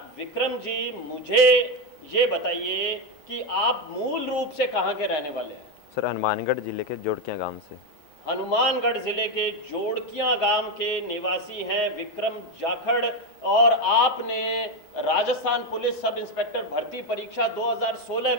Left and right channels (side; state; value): right; late; 6.2 ms